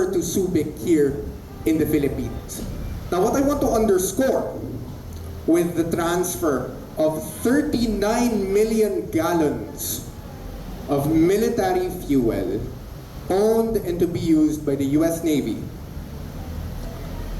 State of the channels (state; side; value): identical; both; correlation 1.00